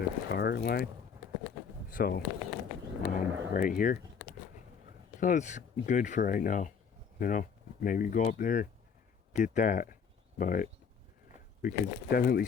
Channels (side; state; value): right; quieter; 6.5 dB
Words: car line. So right here. So it's good for right now. Maybe go up there, get that. But we could definitely